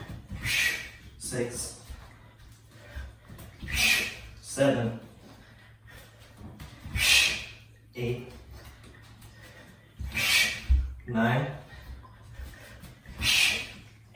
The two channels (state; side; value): identical; both; correlation 1.00